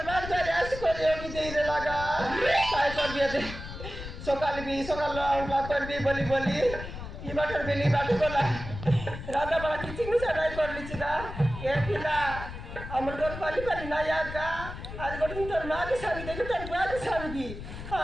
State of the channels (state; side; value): noise; left; rumble, 10 dB below the sound